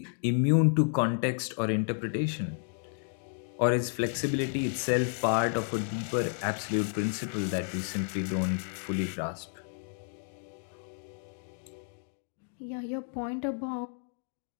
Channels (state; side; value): silent; right; 57 dB below the other